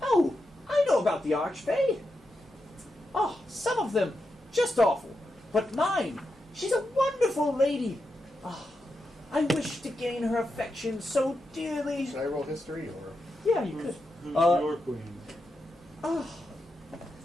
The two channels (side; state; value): both; normal; correlation 0.87